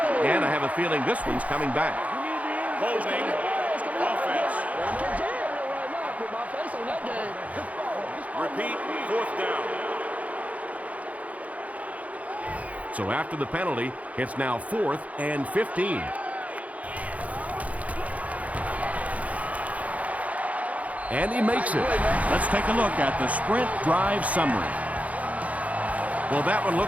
And I have a feeling this one's coming back. Holding offense. Repeat, 4th down. So after the penalty, it's now 4th and 15. And he makes it. Let's take a look at the sprint drive summary. Well, that one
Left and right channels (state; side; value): late; left; 0.069 ms